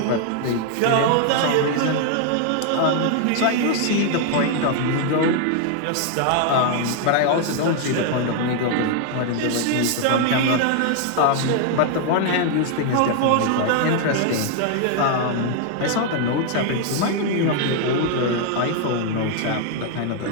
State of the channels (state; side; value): different; both; correlation 0.00